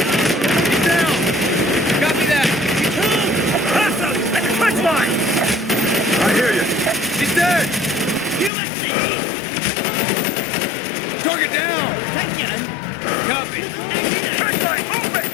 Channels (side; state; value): right; drops out; at 8.5 s